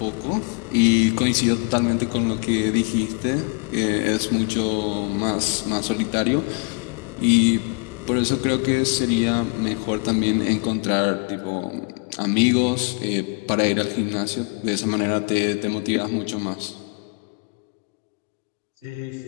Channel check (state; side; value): quieter; right; 34.5 dB